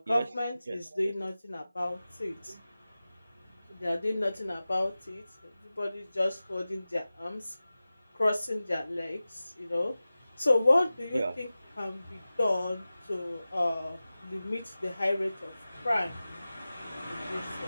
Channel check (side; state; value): both; inverted; correlation -0.96